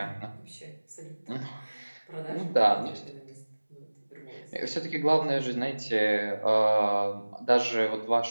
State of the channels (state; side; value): inverted; both; correlation -1.00